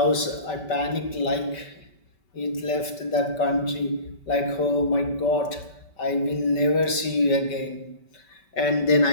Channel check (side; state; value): right; late; 5.2 ms